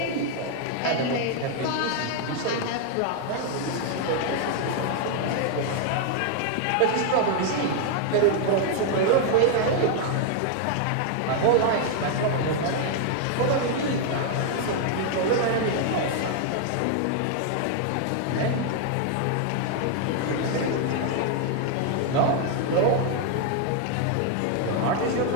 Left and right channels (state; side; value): different; both; correlation 0.00